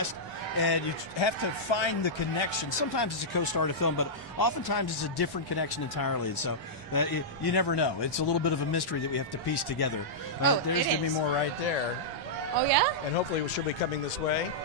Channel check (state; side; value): normal; both; correlation -0.11